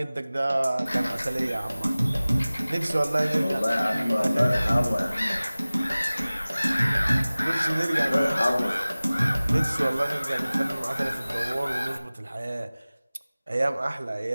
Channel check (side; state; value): both; inverted; correlation -0.98